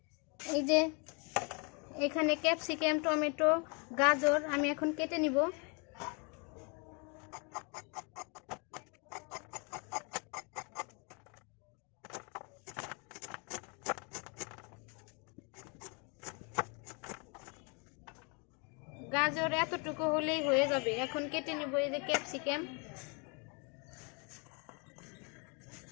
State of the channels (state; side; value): quieter; right; 34.0 dB